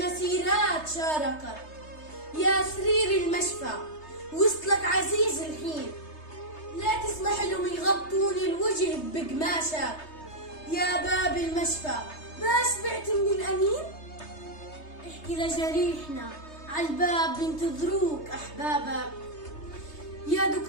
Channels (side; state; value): right; late; 3.3 ms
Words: شاركت. يا سرير المشفى وصلك عزيز الحين، لا تسمح لهم يغطوني الوجه بقماشك. يا باب المشفى ما شبعت من الأنين؟ احكي لجريحنا عالباب بينتظروك أحبابك. يا